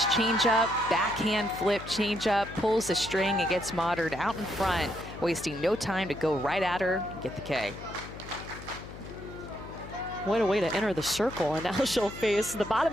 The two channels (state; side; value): noise; left; hum, 13 dB below the sound